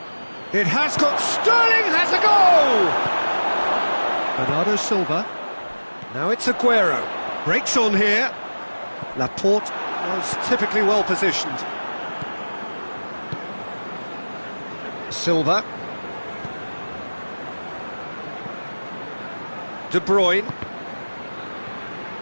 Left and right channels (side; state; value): both; inverted; correlation -1.00